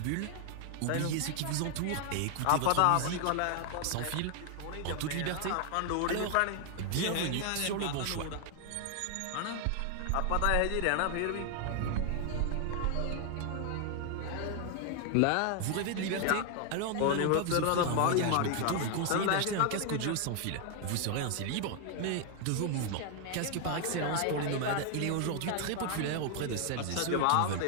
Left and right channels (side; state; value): both; different; correlation 0.00